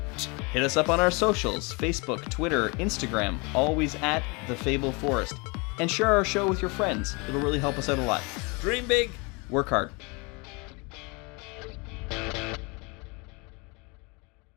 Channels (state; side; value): quieter; right; 29.2 dB